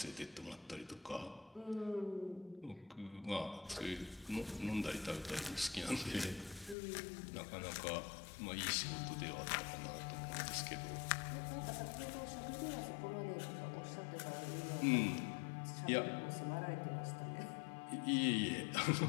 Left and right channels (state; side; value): drops out; right; at 6.8 s